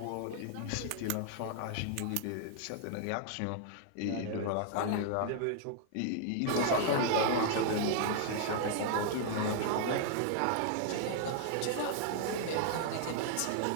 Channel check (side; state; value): both; different; correlation 0.00